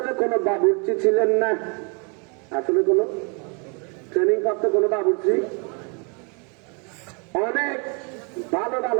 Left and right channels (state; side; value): quieter; left; 35.2 dB